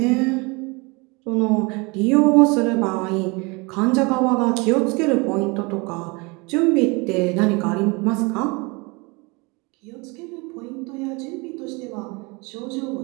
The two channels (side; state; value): left; quieter; 27.8 dB